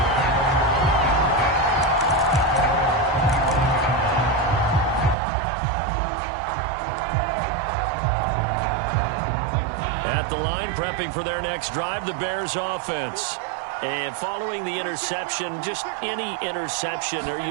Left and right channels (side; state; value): left; drops out; at 5.2 s